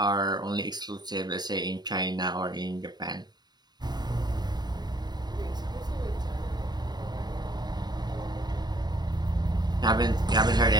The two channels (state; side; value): late; left; 0.20 ms